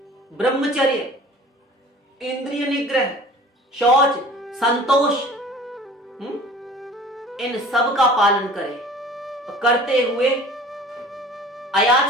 ब्रह्मचर्य, इंद्रिय निग्रह, शौच, संतोष, इन सब का पालन करे, करते हुए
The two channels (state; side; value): normal; both; correlation 0.45